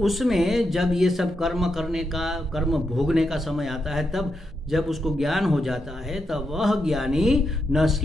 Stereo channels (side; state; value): both; normal; correlation 0.83